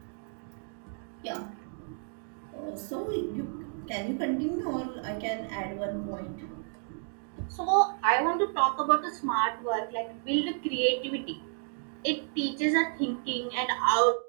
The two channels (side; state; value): left; silent; 57 dB below the other